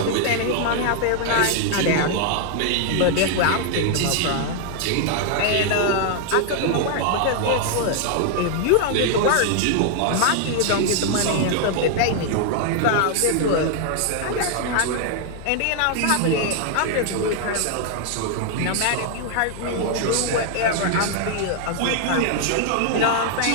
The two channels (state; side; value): different; both; correlation 0.00